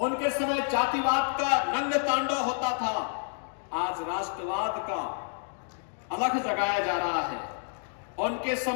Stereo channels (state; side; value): silent; right; 57 dB below the other